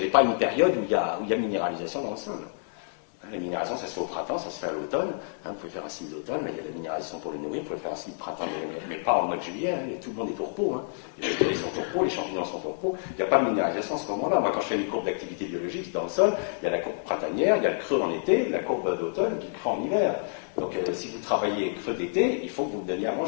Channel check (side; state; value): right; silent; digital silence